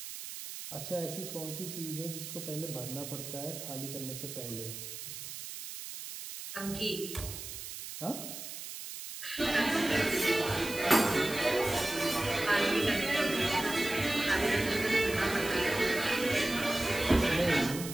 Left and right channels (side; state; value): right; noise; hiss, 9 dB below the sound